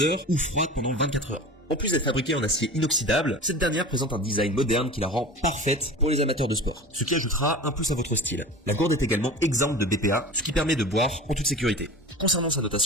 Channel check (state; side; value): normal; both; correlation 0.35